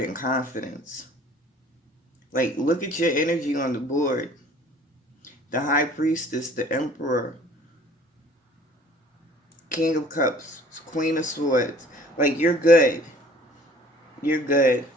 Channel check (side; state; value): both; normal; correlation 0.52